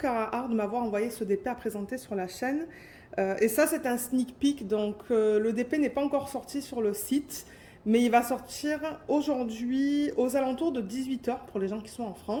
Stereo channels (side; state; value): both; identical; correlation 1.00